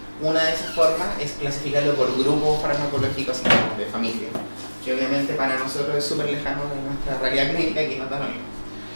Una de esas formas es clasificarlo por grupos farmacológicos de familia, que obviamente para nosotros es súper lejano de nuestra realidad clínica y que no da lo mismo.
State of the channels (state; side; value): inverted; both; correlation -1.00